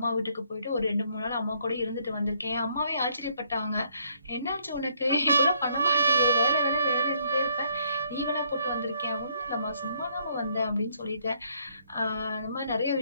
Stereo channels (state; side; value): inverted; both; correlation -0.68